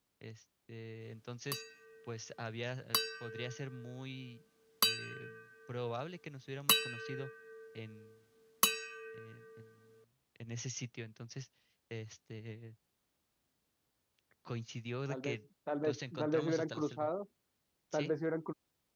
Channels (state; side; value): identical; both; correlation 1.00